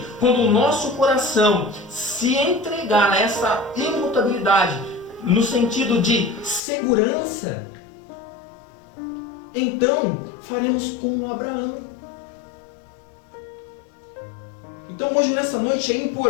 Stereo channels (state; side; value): drops out; right; at 6.6 s